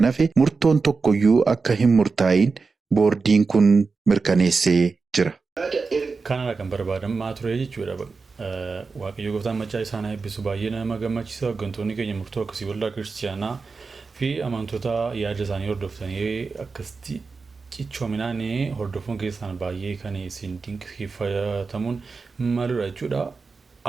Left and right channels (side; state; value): left; quieter; 4.5 dB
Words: hafe murtoon tokkoyyuu akka hin murtaa'in boordiin kun mirkaneessee jira. Kanarraa kan barbaadamaa ture jechuudha. Waaqayyo gooftaan maccaa isaan eebbisu baay'ee nama gammachiisa. Hooggantoonni keenya murtoo akkasii waldaa kiristaanaa fi amantoota yaada isaanii hordoftanii akkasitti cichoominaan hordofuun keessaan baay'ee kan isin dinqisiifatamuun maludha jechuudha.